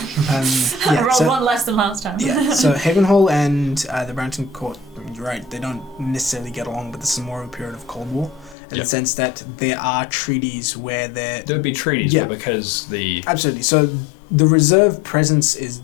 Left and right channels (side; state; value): right; drops out; at 8.6 s